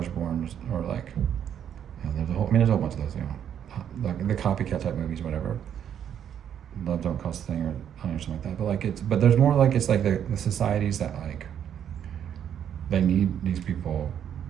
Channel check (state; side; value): quieter; left; 9.2 dB